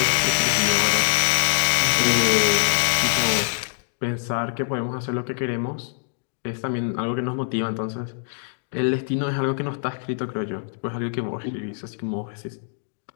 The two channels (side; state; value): right; silent; digital silence